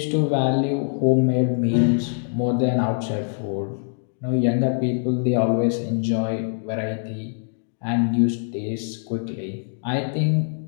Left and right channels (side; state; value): right; silent; digital silence